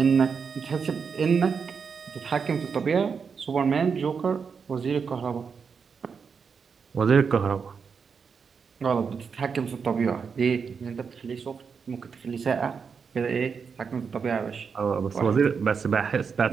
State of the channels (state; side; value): quieter; left; 5.9 dB